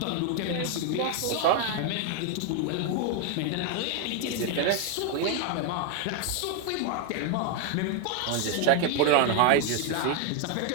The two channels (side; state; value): both; different; correlation 0.01